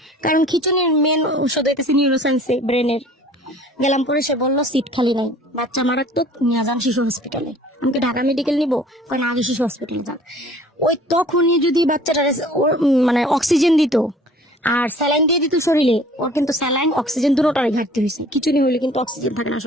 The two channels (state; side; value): normal; both; correlation 0.50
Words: কারণ খিচুনির মেন ওষুধ হইতেছে নিউরোসায়েন্সে, ব্রেনের। গেলাম, পরে সে বললো সিট খালি নাই, বাচ্চা মারাত্মক, নিয়ে যান শিশু হসপিটালে। আমাকে ঢাকা মেডিকেল নিবো, কারণ আগে শিশু হসপিটালে যান। ওই তখনই যদি বাচ্চাটা মানে অক্সিজেন দিত আর স্যালাইন দিয়ে দিত শরীরে, ওর কিন্তু স্যালাইন অক্সিজেন দুটোটারই ঘাটতি হয়েছে। খিচুনি হইলে কিন্তু অক্সিজেন থাকে না